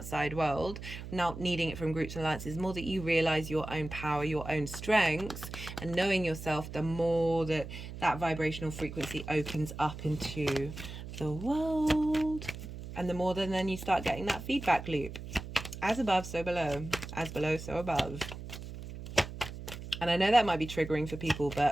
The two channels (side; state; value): right; noise; hum, 10 dB below the sound